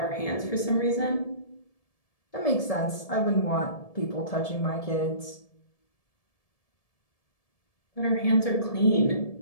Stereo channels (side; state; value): right; late; 1.7 ms